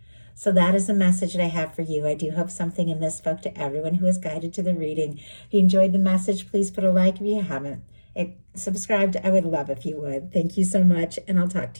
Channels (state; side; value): inverted; both; correlation -1.00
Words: So that is the message that I have for you. I do hope something in this spoke to everyone who is guided to the reading. If you enjoyed the message, please put a like if you haven't. Subscribed, I would love if you would. Thank you so much, and I'll talk